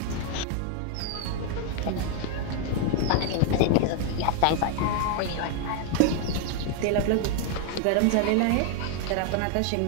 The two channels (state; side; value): different; both; correlation 0.00